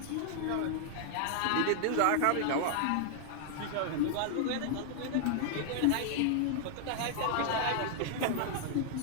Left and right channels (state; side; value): different; both; correlation -0.01